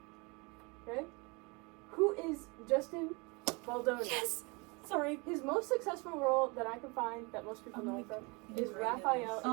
Okay? Who is Justin Baldoni? Yes! Sorry. His most successful role that I can find that most people know him from is Raphael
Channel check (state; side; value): quieter; left; 28.7 dB